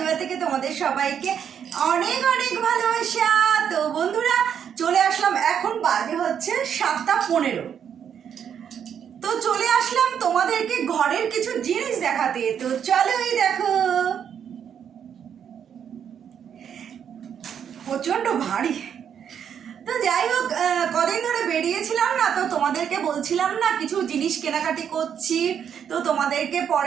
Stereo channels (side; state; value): left; quieter; 8.3 dB